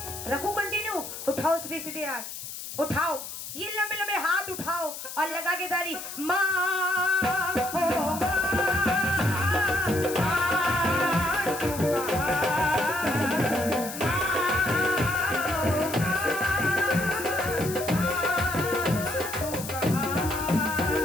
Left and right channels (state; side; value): noise; left; hiss, 9 dB below the sound